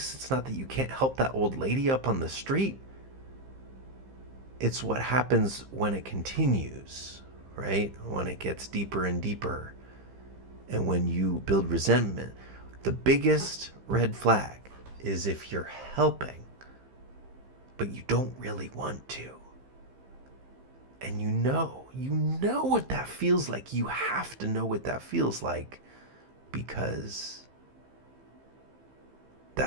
It's not that you can't help that old lady up on the street. It's what happens when it continues, right? When it gets deeper and deeper. And when you build resentment. The biggest red flag is if you're helping, but you don't really want to. And you know what that feels like. You have to know what that feels like, because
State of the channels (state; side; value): late; left; 15 ms